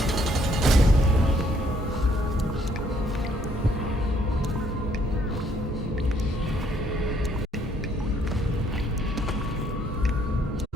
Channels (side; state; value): both; normal; correlation 0.67